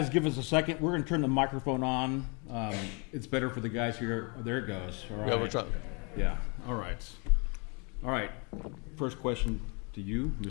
give us a second, we're gonna turn the microphone on. It's better for the guys here. Oh, there it goes. All right. Yeah, we're trying. Yeah, all right. All right, first question to you,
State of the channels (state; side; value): quieter; right; 33.2 dB